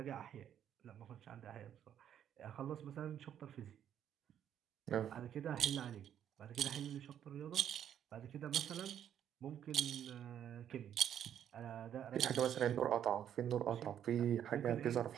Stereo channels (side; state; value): left; quieter; 9.8 dB